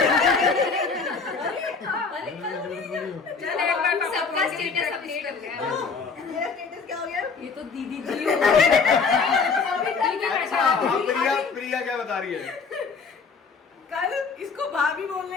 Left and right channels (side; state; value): right; quieter; 5.0 dB